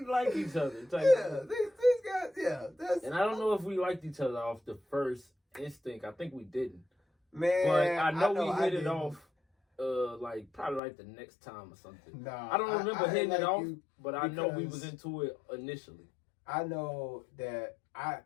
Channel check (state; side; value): drops out; right; at 10.8 s